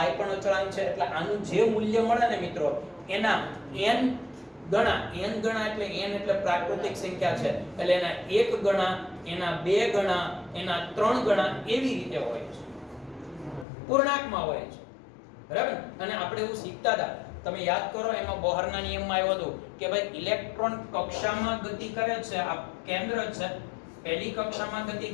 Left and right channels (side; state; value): right; drops out; at 13.7 s